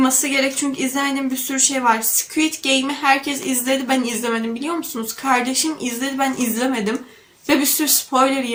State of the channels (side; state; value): both; identical; correlation 1.00